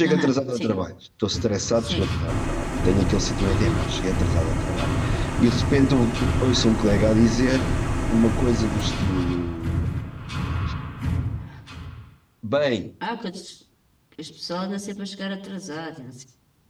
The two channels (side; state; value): both; identical; correlation 1.00